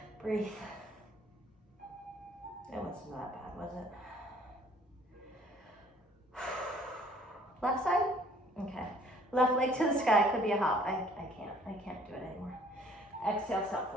Breathe. That wasn't that bad, was it? Left side? Okay. Left leg to the sky, could be a hop. I can't do it anymore. Exhale, step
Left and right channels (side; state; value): both; normal; correlation 0.57